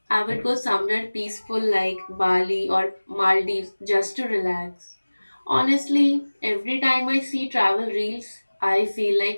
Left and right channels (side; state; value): both; inverted; correlation -1.00